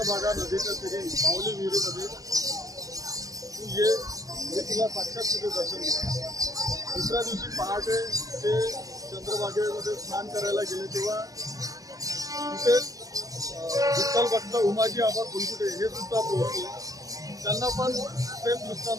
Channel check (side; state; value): left; late; 0.17 ms